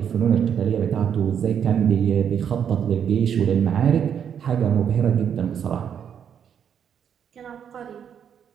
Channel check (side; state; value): left; quieter; 8.3 dB